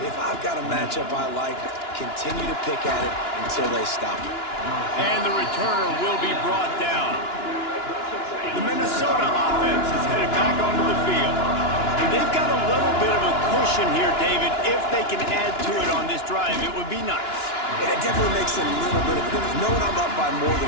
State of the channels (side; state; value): right; late; 2.9 ms